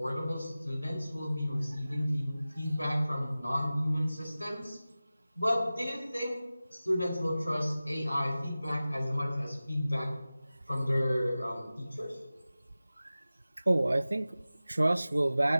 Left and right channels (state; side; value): inverted; both; correlation -0.96